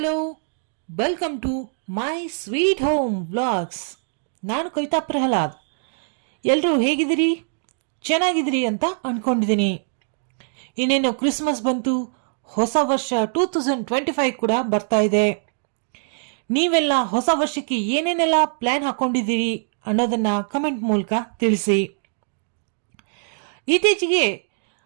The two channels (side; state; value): left; silent; digital silence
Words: welcome to my sweet home vlogs. ನಾನು ಕವಿತಾ ಪ್ರಹ್ಲಾದ್. ಎಲ್ಲರೂ ಹೇಗಿದ್ದೀರಿ? ಚೆನ್ನಾಗಿದ್ದೀರಿ ಅಂತ ಅಂದ್ಕೊಂಡಿದ್ದೀನಿ. ಇನ್ನೇನು ಕ್ರಿಸ್ಮಸ್ ಬಂತು, ಹೊಸ ವರ್ಷ 2025 ಕೂಡ ಬರ್ತಾ ಇದೆ. ನೀವೆಲ್ಲ ಹೊಸ ವರ್ಷಕ್ಕೆ ಏನೇನೆಲ್ಲ ಪ್ಲ್ಯಾನ್ ಹಾಕ್ಕೊಂಡಿದ್ದೀರಿ ಅನ್ನೋದನ್ನು ಕಮೆಂಟ್ ಮೂಲಕ ತಿಳಿಸಿ. ಇತ್ತೀಚೆಗೆ